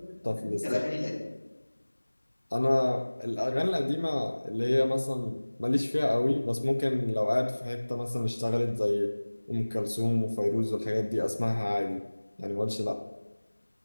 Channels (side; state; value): both; inverted; correlation -1.00